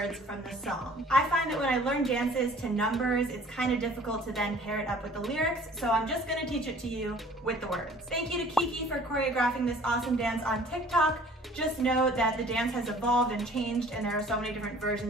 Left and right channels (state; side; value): normal; both; correlation 0.52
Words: from the song. I find that when I learn dances to numbers, it's kind of difficult to then pair it up with the lyrics, so I'm just gonna teach it to you with the words. Thank you to Kiki for choreographing this awesome dance on TikTok. Just know that the dance has evolved and changed, and there are so many different